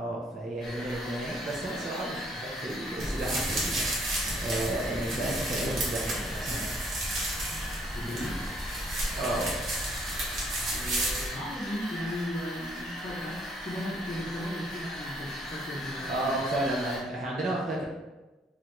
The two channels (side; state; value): both; normal; correlation 0.65